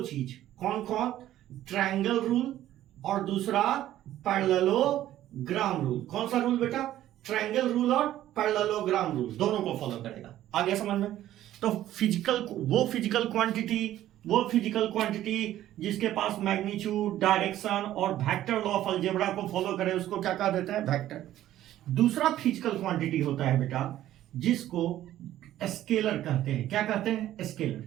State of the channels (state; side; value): quieter; left; 13.2 dB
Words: चीज, कौन कौन, ट्रायंगल रूल और दूसरा पैरेललोग्राम रूल। कौन सा रूल बेटा, ट्रायंगल रूल और पैरेललोग्राम रूल, दोनों को फॉलो करेगा। आ गया समझ में। तो वो फिजिकल क्वांटिटी जिसके पास मैग्नीट्यूड, डायरेक्शन और वेक्टर लॉ ऑफ अलजेब्रा को फॉलो करे उसको क्या कह देते हैं, वेक्टर। दूसरा फिजिकल क्वांटिटी होता है बेटा जिसको स्केलर कहते हैं। क्या कहते हैं, स्केलर।